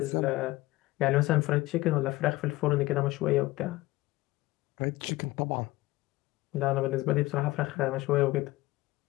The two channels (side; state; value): right; quieter; 18.9 dB